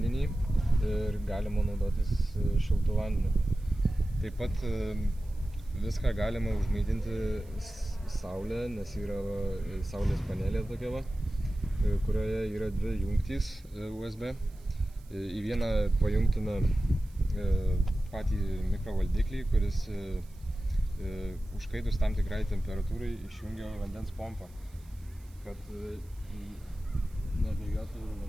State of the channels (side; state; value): right; noise; hiss, 28 dB below the sound